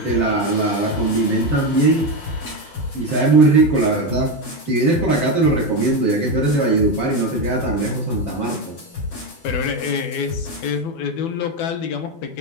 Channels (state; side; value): late; right; 12 ms